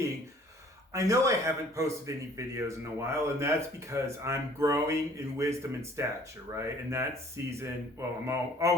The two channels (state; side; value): normal; both; correlation 0.55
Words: I know I haven't posted any videos in a while, and that's because I'm growing in wisdom and stature, right? And that season, well,